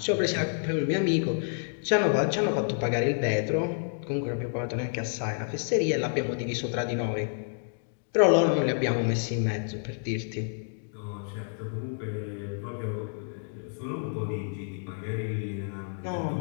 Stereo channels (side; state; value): right; silent; digital silence